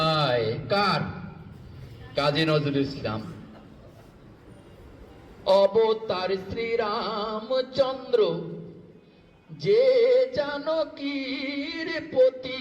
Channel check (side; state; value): both; identical; correlation 1.00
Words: কার? কাজী নজরুল ইসলাম। অবতার শ্রীরামচন্দ্র, যে জানকীর